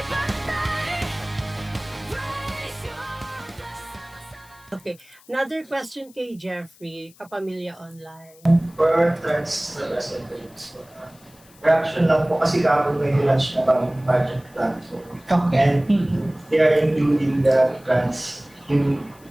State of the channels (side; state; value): left; noise; hiss, 27 dB below the sound